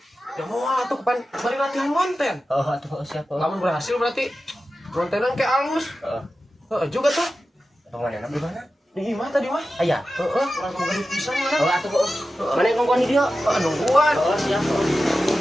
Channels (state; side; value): normal; both; correlation 0.93